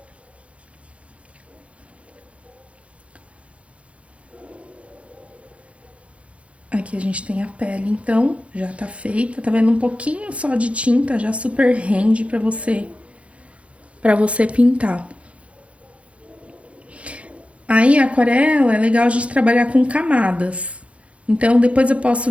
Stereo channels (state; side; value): late; left; 0.062 ms